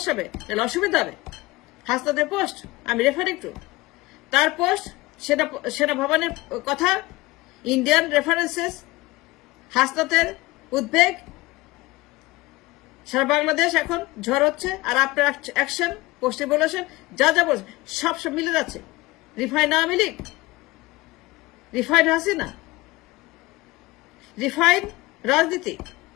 হবে, নাহলে অসুবিধা হবে। হাসনাতের পোস্ট আমি রেফারিং টু, তার পোস্ট, সেনা ভবনের কথা, ইন্ডিয়ান রেফারেন্সেস, হাসনাতের উদ্বেগ, সারা বাংলাদেশ এখন ঝড় হচ্ছে, আর আপনার অ্যাকশন, পোস্টে বলেছেন, যা যা বলছেন সব মিলে যাচ্ছে। Refine Awami League, refine Hasina, refine রাজনীতি,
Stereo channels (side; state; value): right; quieter; 20.5 dB